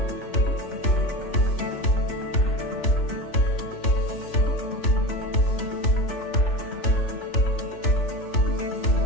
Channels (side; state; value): right; late; 3.4 ms